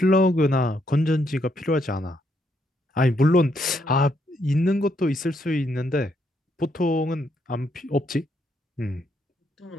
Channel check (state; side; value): normal; both; correlation 0.75